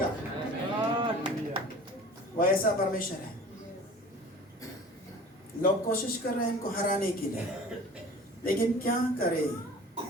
वो ऐसा परमेश्वर है। लोग कोशिश कर रहे हैं इनको हराने के लिए, लेकिन क्या करे,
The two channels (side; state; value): both; normal; correlation 0.43